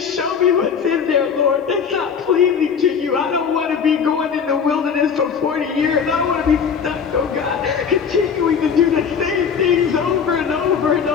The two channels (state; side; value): quieter; right; 6.7 dB